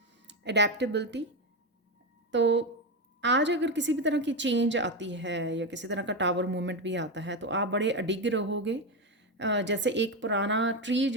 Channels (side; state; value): both; normal; correlation 0.12